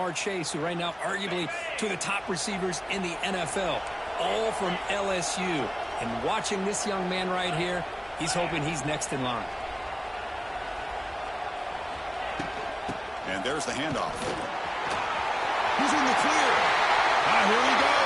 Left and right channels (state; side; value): identical; both; correlation 1.00